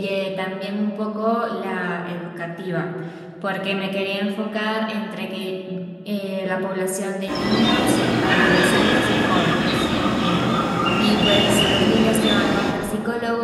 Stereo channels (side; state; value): both; identical; correlation 1.00